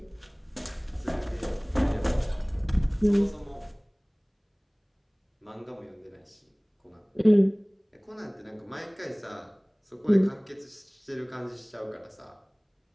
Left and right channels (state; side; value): identical; both; correlation 1.00